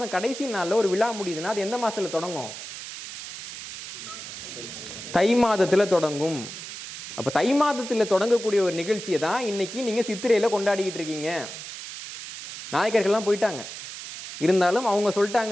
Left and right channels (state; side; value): noise; right; hiss, 10 dB below the sound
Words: கடைசி நாளில் ஒரு விழா முடியுதுன்னா அது எந்த மாதத்தில் தொடங்கும்? தை மாதத்தில் தொடங்கும். அப்போ தை மாதத்தில் தொடங்கக்கூடிய ஒரு நிகழ்ச்சியை தான் இன்னைக்கு நீங்கள் சித்திரையில் கொண்டாடிக்கிட்டு இருக்கீங்க. நாயக்கர்கள்லாம் போயிட்டாங்க, இருந்தாலும் அவங்க